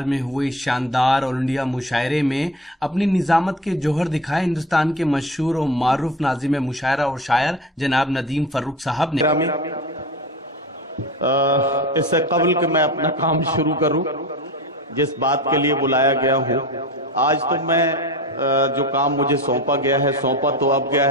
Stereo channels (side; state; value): both; normal; correlation 0.30